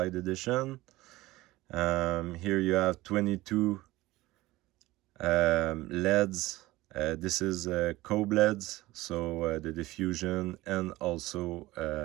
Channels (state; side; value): quieter; left; 18.5 dB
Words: Edition. Here you have 22 LEDs. This is Coda LEDs, so the diffusion and also